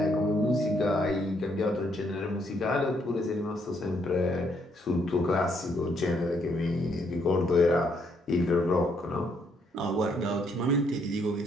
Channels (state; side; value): normal; both; correlation 0.71